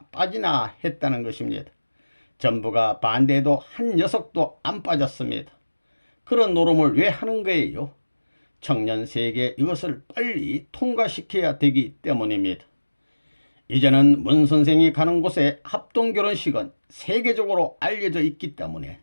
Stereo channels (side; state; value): both; inverted; correlation -1.00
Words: 빠지나 했다는 것입니다. 전부가 반대해도 한 녀석도 안 빠졌습니다. 그런 노름을 왜 하는 거예요? 청년 세계 이것을 빨리 통과시켜야 되기 때문입니다. 이제는 문 선생이 가는 곳에 합동결혼식은 세계적으로 알려져 있기 때문에